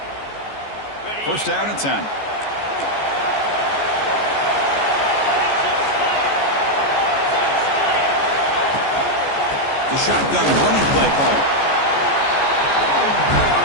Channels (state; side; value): late; right; 14 ms